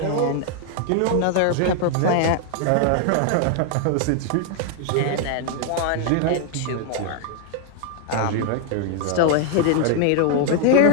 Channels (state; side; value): different; both; correlation 0.00